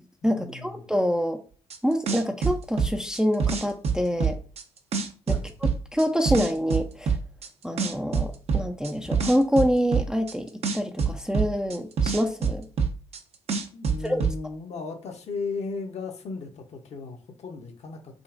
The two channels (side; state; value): both; normal; correlation 0.83